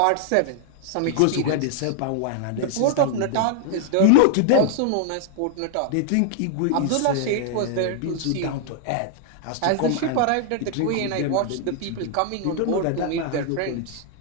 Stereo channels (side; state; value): both; different; correlation 0.00